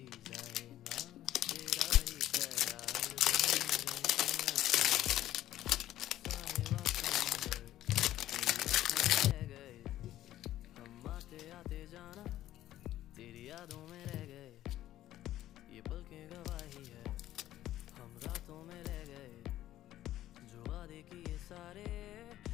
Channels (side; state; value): right; quieter; 13.5 dB